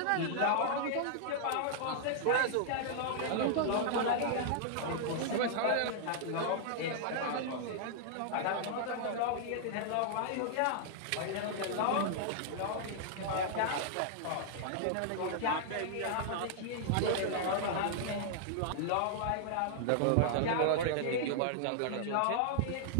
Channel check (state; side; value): different; both; correlation -0.01